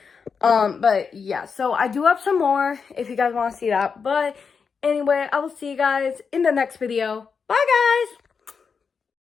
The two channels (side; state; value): right; quieter; 5.7 dB